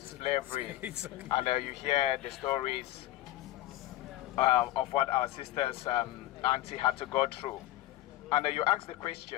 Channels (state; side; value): quieter; right; 15.3 dB